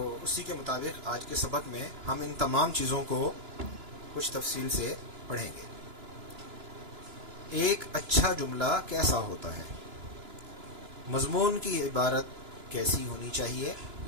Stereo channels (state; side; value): late; left; 2.9 ms